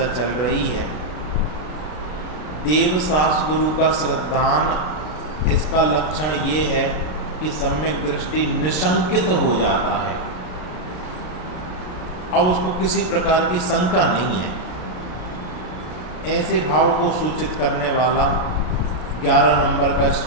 चल रही है। देव शास्त्र गुरु का श्रद्धान, इसका लक्षण ये है कि सम्यक दृष्टि निशंकित हो जाता है। अब उसको किसी प्रकार की शंका नहीं है। ऐसे भाव को सूचित करने वाला 11 नंबर का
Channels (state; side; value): late; right; 33 ms